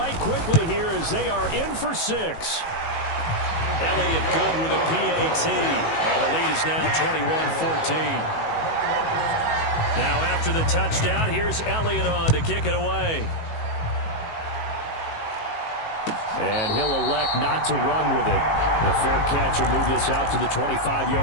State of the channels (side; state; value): right; late; 18 ms